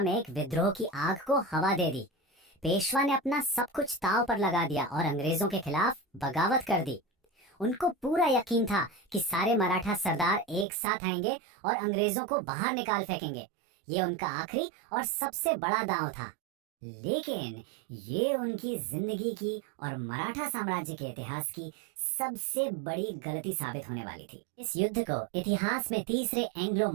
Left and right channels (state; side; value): drops out; left; at 10.7 s